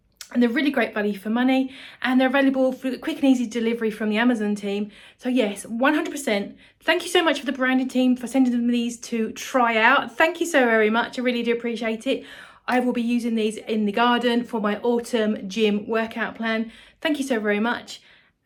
And they're really great value for money, and they're available for quick and easy delivery from the Amazon team. So yes, 100%. Thank you so much for the branding team for sending them these to try out. Thank you so very much. I really do appreciate it. I will be using these in the garden for my autumn gym workout plan. Thank you so very much.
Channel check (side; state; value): both; identical; correlation 1.00